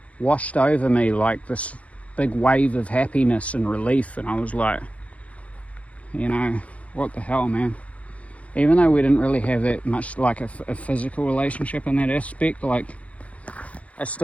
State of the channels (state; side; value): late; right; 0.065 ms